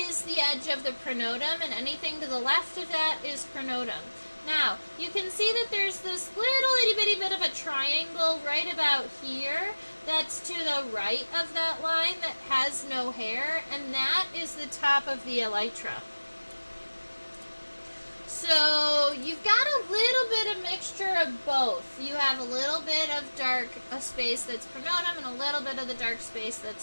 the edge of the pronotum, and anything to the left of that is pronotum. Now, you can see that there's this little itty bitty bit of a triangle right about here that's to the right of that line that has no hair, and that is the top of the elytra. So you've got a little bit of mixture of both. You have a little bit of dark space that's pronotum and a little bit of the dark space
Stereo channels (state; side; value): inverted; both; correlation -1.00